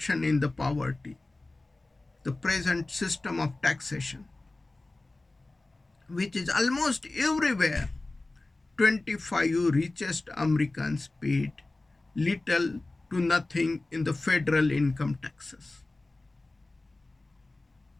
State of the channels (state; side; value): quieter; right; 3.0 dB